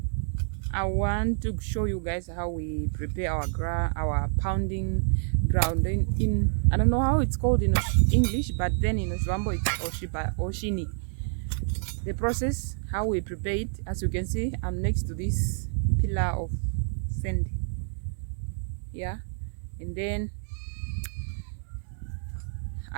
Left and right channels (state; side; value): silent; left; digital silence